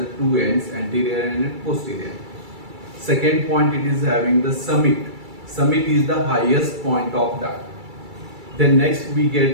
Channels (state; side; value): late; left; 2.3 ms